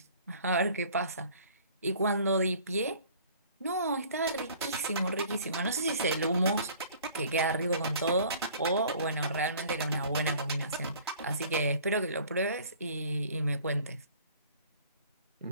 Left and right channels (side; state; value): both; inverted; correlation -0.51